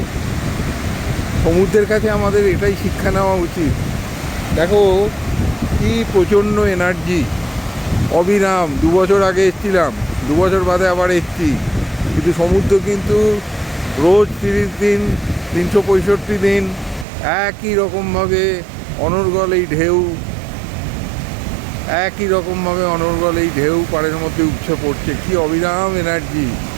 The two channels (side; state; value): left; drops out; at 17.1 s